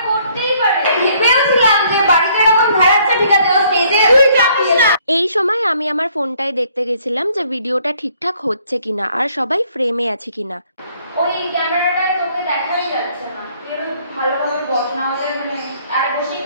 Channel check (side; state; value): both; inverted; correlation -0.64